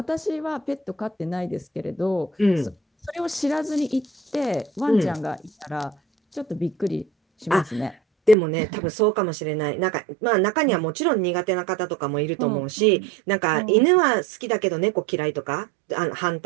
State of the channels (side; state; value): left; drops out; at 8.3 s